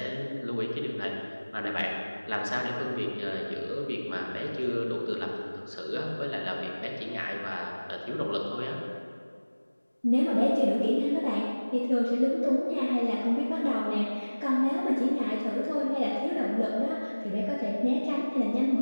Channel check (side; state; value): both; inverted; correlation -1.00